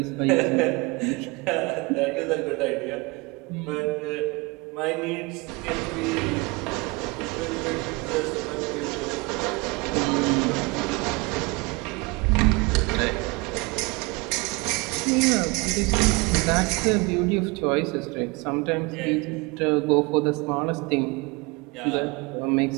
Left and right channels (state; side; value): quieter; left; 26.5 dB